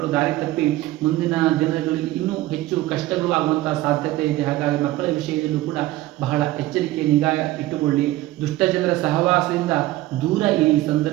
ದಾರಿ ತಪ್ಪಿ ಮುಂದಿನ ದಿನಗಳಲ್ಲಿ ಇನ್ನೂ ಹೆಚ್ಚು ಕಷ್ಟಗಳು ಆಗುವಂತಹ ಸಾಧ್ಯತೆ ಇದೆ. ಹಾಗಾಗಿ ಮಕ್ಕಳ ವಿಷಯದಲ್ಲೂ ಕೂಡ ಬಹಳ ಎಚ್ಚರಿಕೆ, ನಿಗಾ ಇಟ್ಟುಕೊಳ್ಳಿ. ದುಷ್ಟ ಜನರ ಸಹವಾಸದಿಂದ ದೂರ ಈ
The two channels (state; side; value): quieter; left; 16.6 dB